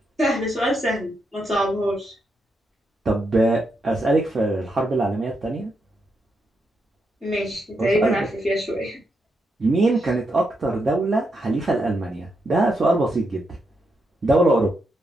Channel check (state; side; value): normal; both; correlation 0.82